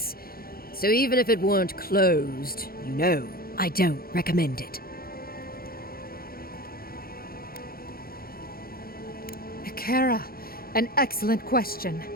So even if it weren't closed, you know, I don't recommend it. Kara, an excellent question.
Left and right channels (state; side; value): late; right; 0.43 ms